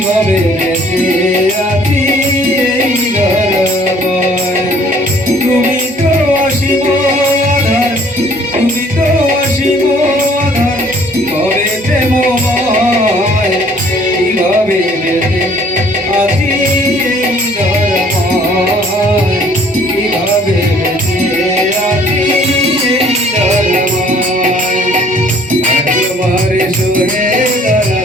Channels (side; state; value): both; normal; correlation 0.57